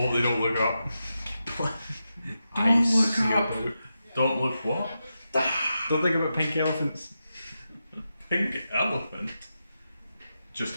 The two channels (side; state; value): both; inverted; correlation -0.89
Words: they don't look up. Don't Eyes look sealed up. out. don't look what? Don't think about pink elephants. Pink elephant just